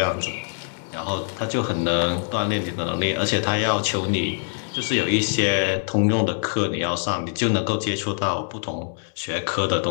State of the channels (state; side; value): silent; right; digital silence